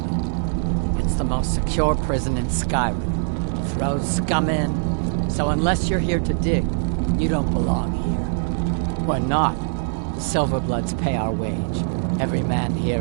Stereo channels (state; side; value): silent; left; digital silence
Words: It's the most secure prison in Skyrim. Throws scum in, so unless you're here to dig, you don't belong here. We're not. The Silverbloods pay our wage. Every man